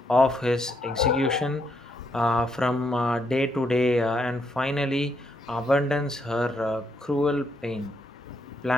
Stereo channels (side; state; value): both; normal; correlation 0.76